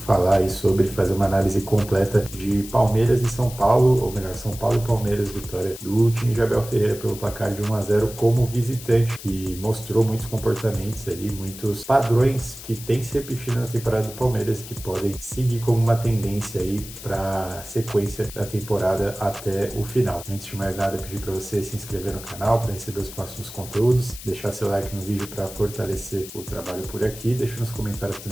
falar aí sobre fazer uma análise completa de Palmeiras e São Paulo, ou melhor, São Paulo e Palmeiras, vitória do time de Abel Ferreira pelo placar de 1-0 como visitante, que mostrou muitos comportamentos ali, muitos padrões que tem se repetido na temporada do Palmeiras que podem seguir como uma tendência aí para a sequência da temporada até o final. Antes de mais nada, pedir para você se inscrever no canal para receber os próximos conteúdos, deixar seu like no vídeo para fortalecer o trabalho por aqui, deixa nos comentários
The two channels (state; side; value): noise; left; hiss, 14 dB below the sound